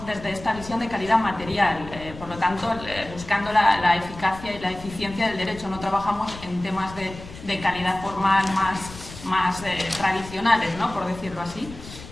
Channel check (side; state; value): left; noise; rumble, 15 dB below the sound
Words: desde esta visión de calidad material, por lo tanto, buscando la eficacia y la eficiencia del derecho. No trabajamos en temas de calidad formal más tradicionales, ¿no? Por decirlo así.